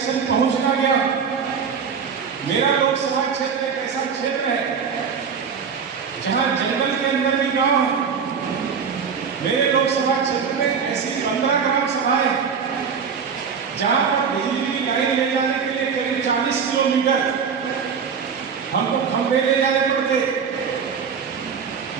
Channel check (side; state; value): left; quieter; 6.4 dB